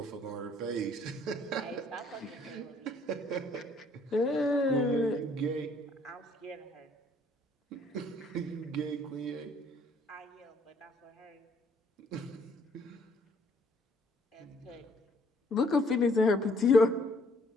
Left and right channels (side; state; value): both; normal; correlation 0.63